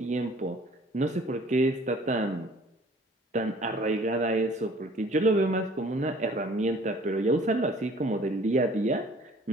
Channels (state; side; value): normal; both; correlation 0.52